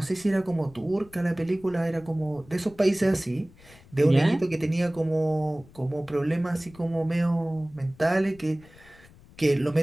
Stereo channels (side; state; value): left; noise; rumble, 24 dB below the sound